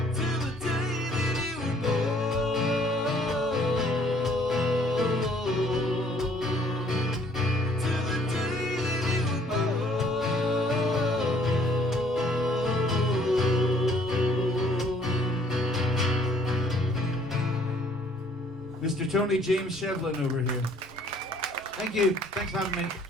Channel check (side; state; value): both; normal; correlation 0.61